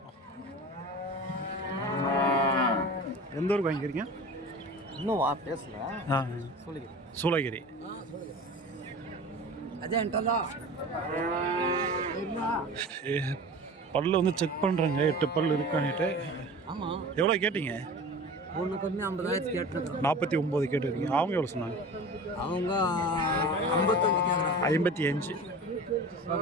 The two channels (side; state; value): both; normal; correlation 0.36